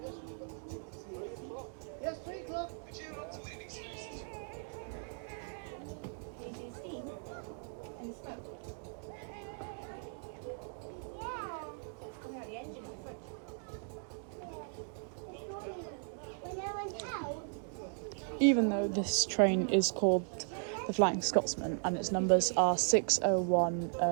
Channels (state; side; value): silent; left; 53 dB below the other